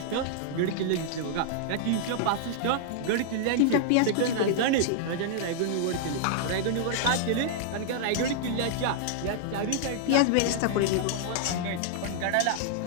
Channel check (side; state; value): both; different; correlation -0.01